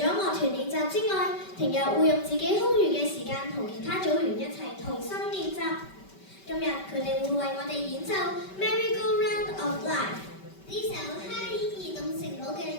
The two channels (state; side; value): late; right; 5.2 ms